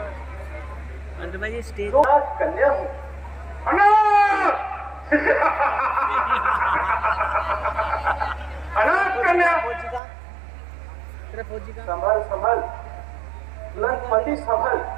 स्टेज कन्या हूँ। अनाथ कन्या। संभल संभल, लंकपति संभल,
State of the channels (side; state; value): left; drops out; at 10.0 s